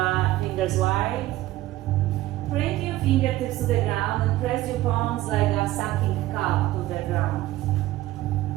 wide. Bring your fingertips to the ground and press your palms like a sucking cup to the ground.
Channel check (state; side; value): quieter; left; 16.0 dB